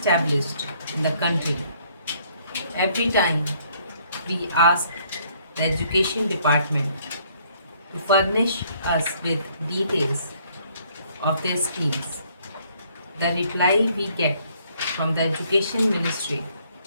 in the country. Every time we ask the Education Department to furnish us with details of their schemes, the reply we get from the Education Ministry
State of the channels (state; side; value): inverted; both; correlation -0.65